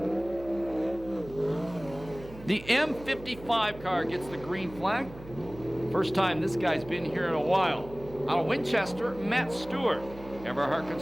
The M55 car gets the green flag. First time this guy's been here in a while. Out of Winchester, Matt Stewart. Everhart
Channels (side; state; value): right; noise; hum, 16 dB below the sound